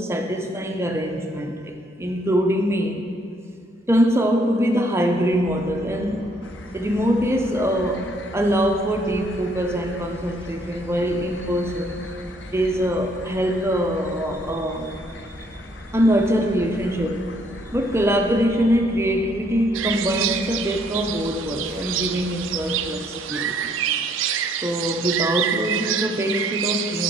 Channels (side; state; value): both; normal; correlation 0.66